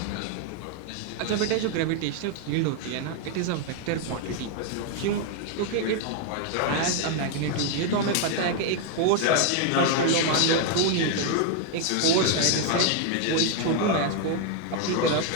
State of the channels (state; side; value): different; both; correlation 0.00